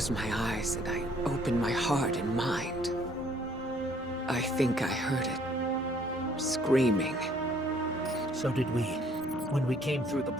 my eyes and I opened my heart and mind. I think I heard it. Screaming. So did we, when we came through the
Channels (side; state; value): both; normal; correlation 0.62